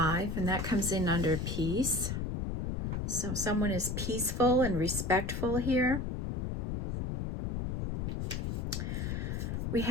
and that comes in under peace. So someone is peaceful and respectful here. We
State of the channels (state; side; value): noise; left; rumble, 2 dB below the sound